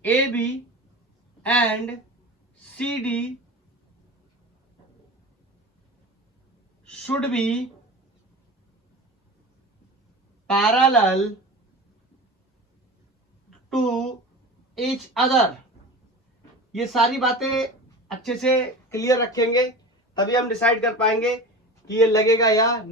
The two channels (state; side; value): normal; both; correlation 0.32